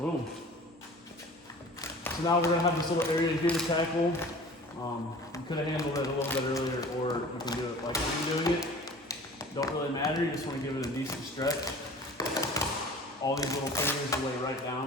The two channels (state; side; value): normal; both; correlation 0.43